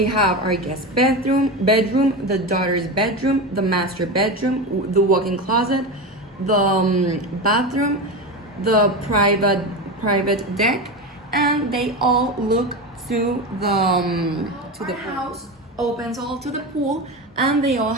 have our guest bedroom, the daughter's bedroom, the master bedroom, the walk-in closet, the bathroom, the private deck, and they all look to the house, opens all to the pool, and they all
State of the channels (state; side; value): normal; both; correlation 0.21